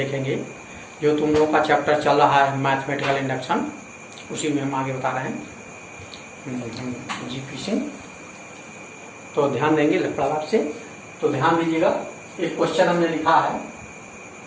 जो तुम लोगों का चैप्टर चल रहा है मैथमेटिकल इंडक्शन, उसी में हम आगे बता रहे हैं जीपी सिंह। तो ध्यान देंगे लड़ाप से। तो ध्यान दीजिएगा, एक क्वेश्चन हमने लिखा है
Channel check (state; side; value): identical; both; correlation 1.00